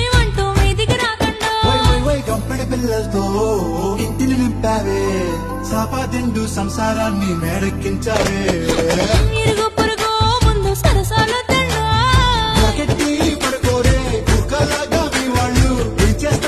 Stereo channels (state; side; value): identical; both; correlation 1.00